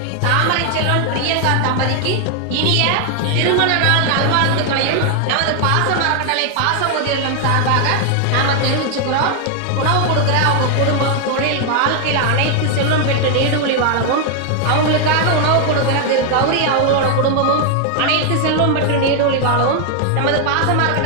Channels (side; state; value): both; different; correlation 0.00